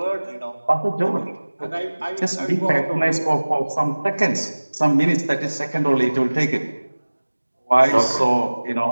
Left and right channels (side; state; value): both; inverted; correlation -1.00